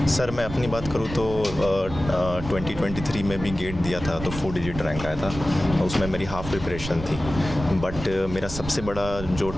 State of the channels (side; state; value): right; noise; rumble, 9 dB below the sound